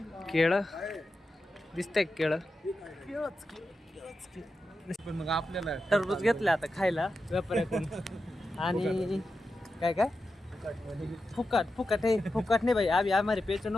केळं दिसतंय. केळं पण मग आपल्याला टरबूज घेतलं आता खायला व्यापाऱ्याकडून. आणि काय काय फुकट फुकट है, फुकट नहीं भाई, अभी हमारे पेचन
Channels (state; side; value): normal; both; correlation 0.90